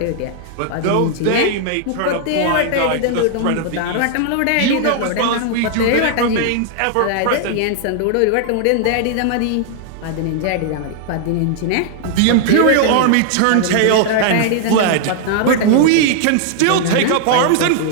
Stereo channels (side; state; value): both; different; correlation 0.00